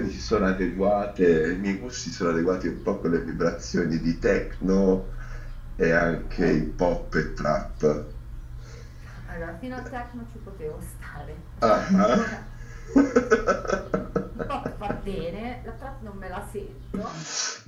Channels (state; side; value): identical; both; correlation 1.00